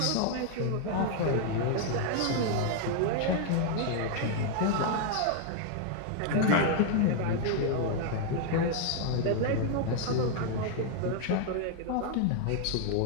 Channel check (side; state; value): both; different; correlation 0.00